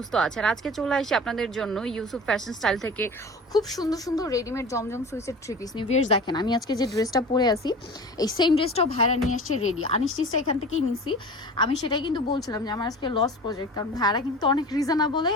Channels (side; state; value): both; normal; correlation 0.36